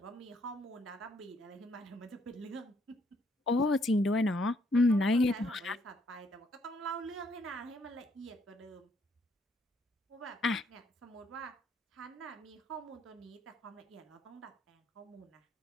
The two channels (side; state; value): both; normal; correlation 0.70